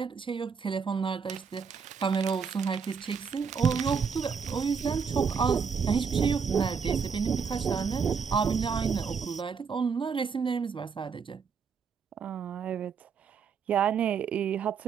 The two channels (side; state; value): left; quieter; 6.1 dB